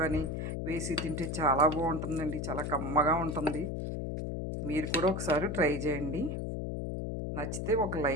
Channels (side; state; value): left; noise; hum, 3 dB below the sound